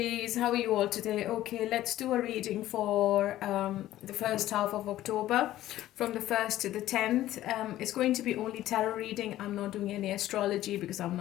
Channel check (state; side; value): quieter; right; 14.2 dB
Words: How are you all today? Okay, let's do a reading for the first half of October from the 1st to the 10th. It's going to be only tarot reading. I'm not doing any astrology because I'm